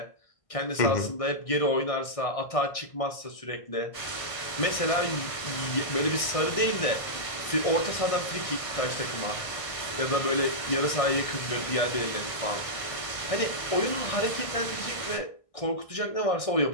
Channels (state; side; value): late; right; 1.6 ms